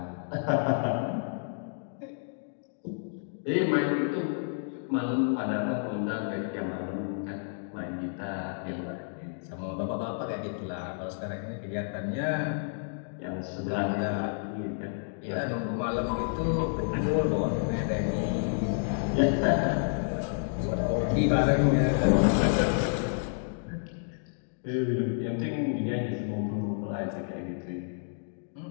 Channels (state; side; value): silent; right; digital silence